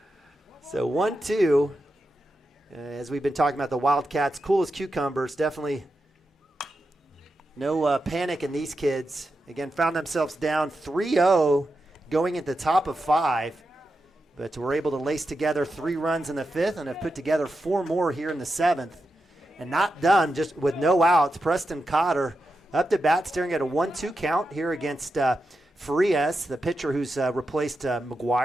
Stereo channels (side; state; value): both; normal; correlation 0.88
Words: So 1-2, as we've been talking about the Wildcats, cool as cucumbers, definitely no panic in these kids. Again, found themselves down 3-0 going at the top of 5, but were able to lace together 3 runs in the 5th and have put together 4 more here in the 7th. And not done, just with no outs. Preston Cotter up to bat, staring at a 1-2 count here against Farias, the pitcher who's replaced